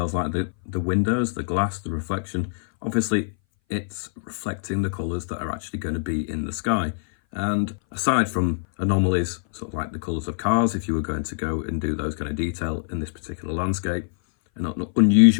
like the windows, the glass, the reflection, obviously it's reflecting the colours that are actually going to be in the sky. And aside from anomalies, sort of like the colours of cars, if you were going to go and do those kind of detail in this particular landscape, and not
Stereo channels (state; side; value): silent; right; 59 dB below the other